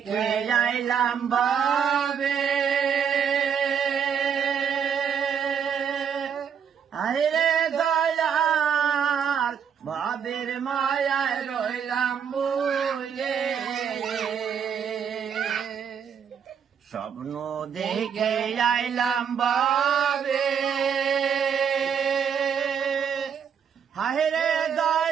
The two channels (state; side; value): quieter; left; 7.5 dB